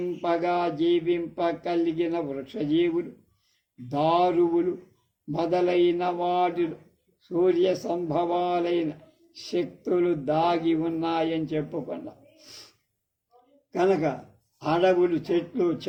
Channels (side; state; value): both; identical; correlation 1.00